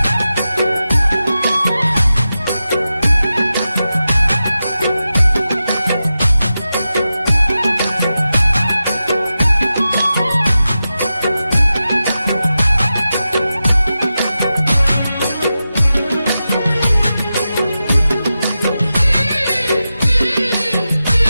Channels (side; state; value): both; inverted; correlation -0.92